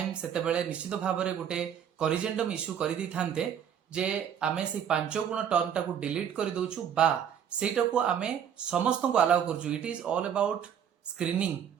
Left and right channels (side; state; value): left; quieter; 8.7 dB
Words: सेते बेले निश्चित भाव रे गोटे करिजेंटम इशू करि दी थांते जे आमे से 5 गुण टर्म टाको डिलीट कर दउछु बा सेटा को आमे समस्त को अलाउ करजु। It is all about screening